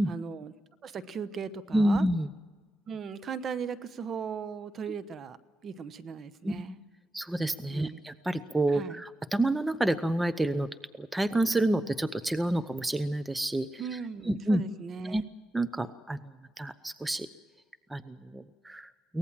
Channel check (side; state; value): both; normal; correlation 0.91